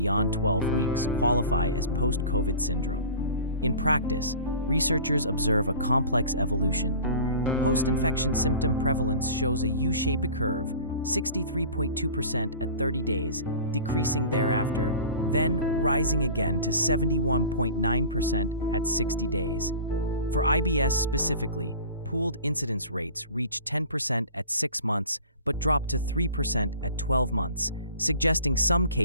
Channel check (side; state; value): both; inverted; correlation -0.40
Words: 12 weeks qualify as post-COVID syndrome. In practice, researchers observe a complex evolution. Post-infection symptom prevalence shows a U-shaped curve, 63.2% at 30 days, decreasing thereafter, then rising again to 71.9% at 60 days. For IBS specifically, pooled incidence rates reach 10% at 6 months but drop to 3% at 12 months, suggesting some